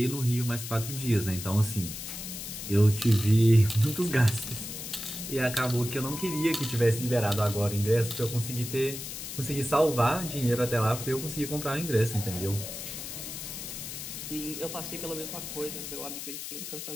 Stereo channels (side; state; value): left; noise; hiss, 8 dB below the sound